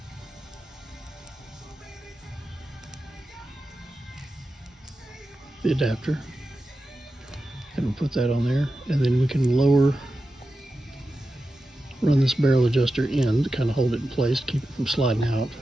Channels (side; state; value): both; normal; correlation 0.92